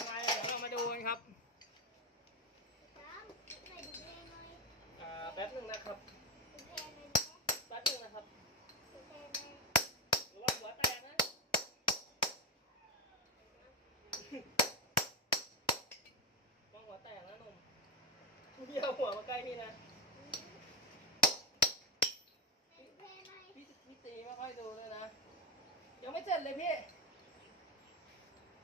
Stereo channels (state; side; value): normal; both; correlation 0.13